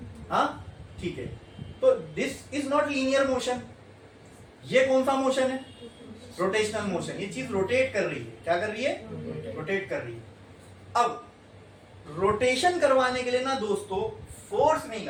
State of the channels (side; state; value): both; identical; correlation 1.00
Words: हाँ, ठीक है। तो this is not linear motion. ये कौन सा मोशन है? Rotational motion. ये चीज रोटेट कर रही है। क्या कर रही है? रोटेट कर रही है। अब रोटेशन करवाने के लिए ना दोस्तों फोर्स नहीं